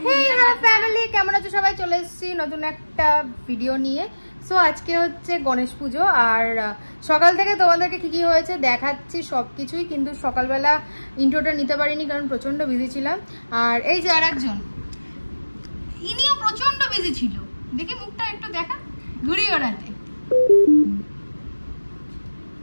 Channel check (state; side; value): inverted; both; correlation -1.00